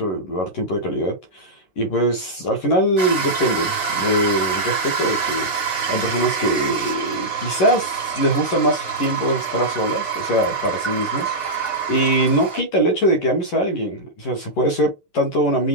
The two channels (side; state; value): right; late; 11 ms